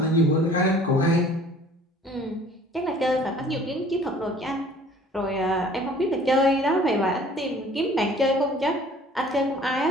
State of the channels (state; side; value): normal; both; correlation 0.51